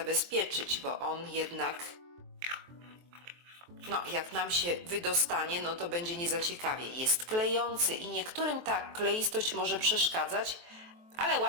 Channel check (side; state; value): left; late; 23 ms